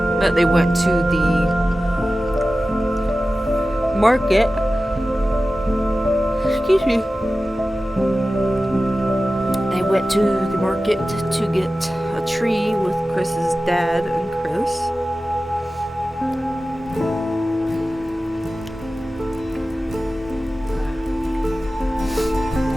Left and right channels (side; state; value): both; normal; correlation 0.95